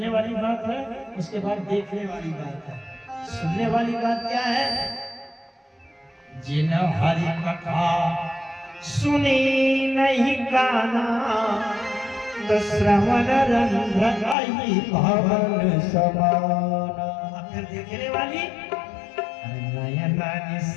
वाली बात है, उसके बाद देखने वाली बात है। सुनने वाली बात क्या है? जिन हरि कथा सुनी नहीं गाना, तो श्रवण रंध्र भवन समाना। फिर देखने वाली, नयना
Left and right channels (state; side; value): drops out; right; at 14.4 s